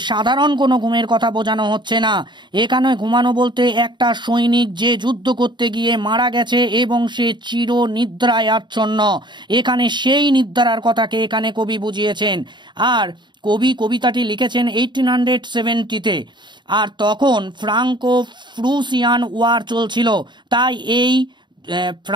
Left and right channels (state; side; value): late; left; 0.22 ms